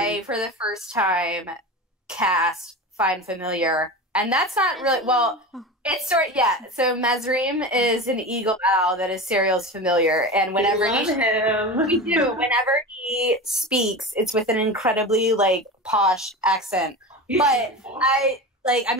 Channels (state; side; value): normal; both; correlation 0.27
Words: for the first time, cast Find Familiar. And that's not really, well, it's sort of, yeah. So Mesrim is an eagle owl that is Serial's familiar. And whenever we do, whenever he speaks, it's with an incredibly, like, posh accent. But I